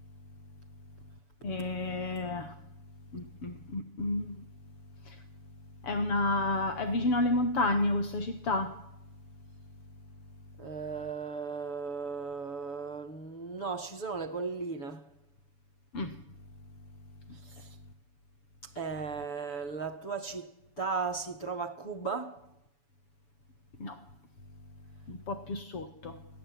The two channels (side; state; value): right; late; 7.0 ms